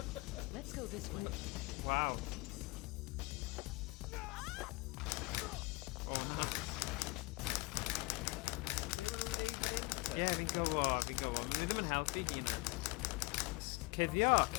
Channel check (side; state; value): right; quieter; 23.8 dB